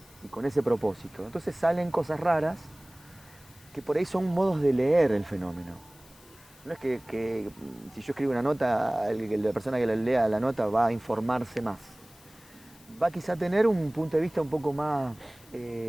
y con ese propósito. Entonces salen cosas raras que por ahí son modos de leer el fenómeno. No es que si yo escribo una nota, la persona que la lea la nota va a informarse más. Va quizá a tener un punto de vista un poco más,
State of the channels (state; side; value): noise; left; hiss, 26 dB below the sound